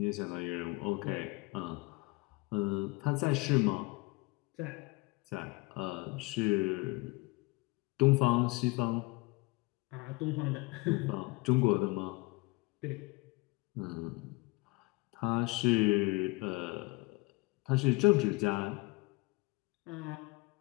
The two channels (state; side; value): quieter; right; 24.5 dB